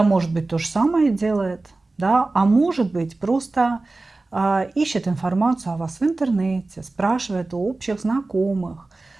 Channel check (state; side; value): quieter; left; 3.3 dB